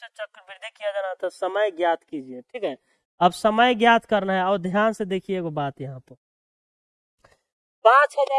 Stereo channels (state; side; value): identical; both; correlation 1.00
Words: चक्रवृद्धि किया जाना था। समय ज्ञात कीजिए, ठीक है। अब समय ज्ञात करना है और ध्यान से देखिए एगो बात यहाँ पर।